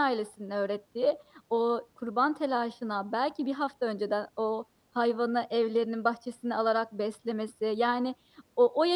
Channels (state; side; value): identical; both; correlation 1.00